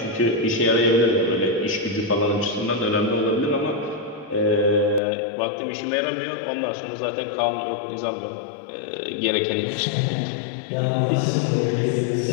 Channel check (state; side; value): drops out; right; at 5.0 s